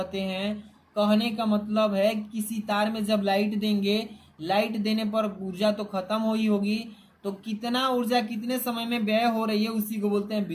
हैं। कहने का मतलब है किसी तार में जब लाइट देंगे, लाइट देने पर ऊर्जा तो खत्म हो ही होगी, तो कितना ऊर्जा कितने समय में व्यय हो रही है उसी को बोलते हैं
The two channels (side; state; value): both; identical; correlation 1.00